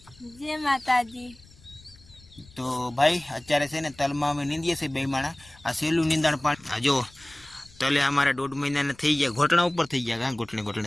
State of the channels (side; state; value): left; noise; rumble, 25 dB below the sound